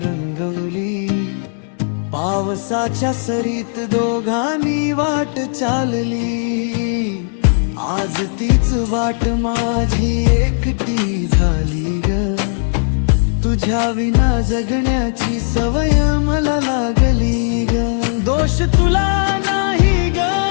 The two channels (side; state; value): right; silent; digital silence